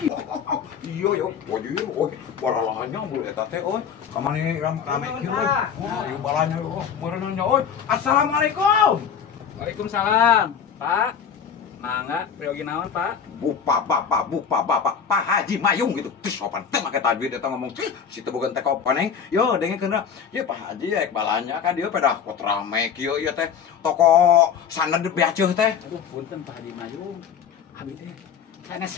Iya yo, baralahnya mulu eta teh euy. Kamari rame kieu euy. Oh, ieu balanya euy. Meureunnya euy. Assalamualaikum. Waalaikumsalam, Pak. Mangga, priogi naon, Pak? Bupa bapak, Pak Haji Mayung gitu. Terus sopan teh make tajwid eta ngomong si teu boga teh koneng. Yo dengekeun ieu Pak Haji ek balanya kan dieu pada pot rame kieu ieu teh toko sanad beaceuk teh. Aduh, punten Pak Haji Mayung. Abi teh kana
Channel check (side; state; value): right; quieter; 7.3 dB